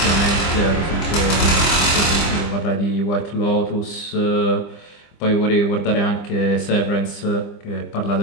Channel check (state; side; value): late; right; 25 ms